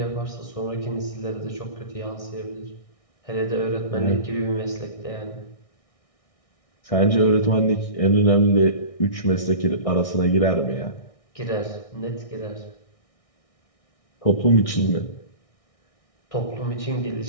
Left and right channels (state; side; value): late; right; 1.6 ms